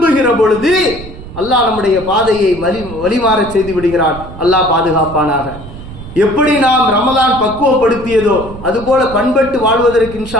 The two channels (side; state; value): right; noise; rumble, 14 dB below the sound